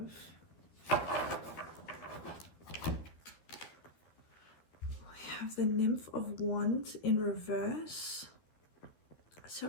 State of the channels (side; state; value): right; late; 13 ms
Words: have the Nymph of Wands in reverse. So